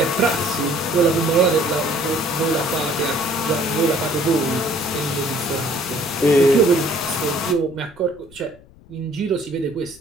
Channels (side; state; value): left; noise; rumble, 24 dB below the sound